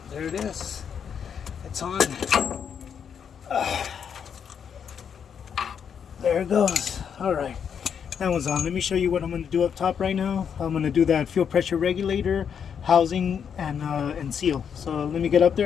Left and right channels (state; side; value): quieter; right; 7.5 dB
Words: There it is. It's on. There it goes. All right. That one's on. Let me show you what I'm going to do up top right now. I'm going to do that fuel pressure regulator, housing, and seal. So let me get up there